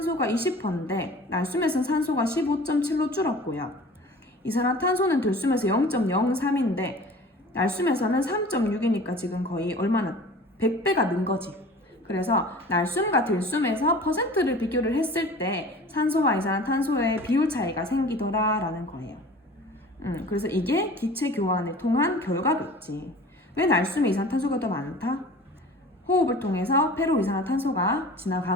20%인데 날숨에서는 산소가 15.7로 줄었고요. 이산화탄소는 들숨에서 0.03인데 날숨에서는 3.6이니까 지금 거의 얼마나 100배가 는 거지. 그래서 날숨과 들숨에서 퍼센트를 비교를 했을 때 산소와 이산화탄소의 비율 차이가 생기더라라는 거예요. 그래서 이게 기체 교환을 통한 결과겠지. 왜 날숨에 이산화탄소가 더 많다? 호흡을 통해서 폐로 이산화탄소가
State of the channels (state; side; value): normal; both; correlation 0.42